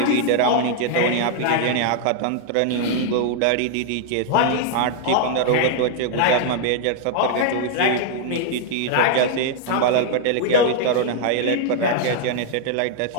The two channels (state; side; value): different; both; correlation 0.00